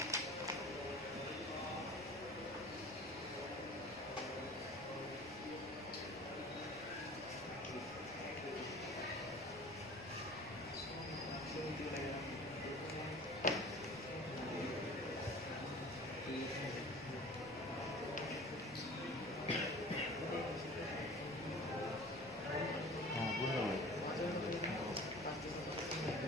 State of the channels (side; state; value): both; normal; correlation 0.42